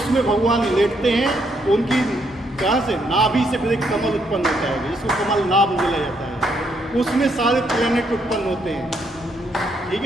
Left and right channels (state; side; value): normal; both; correlation 0.74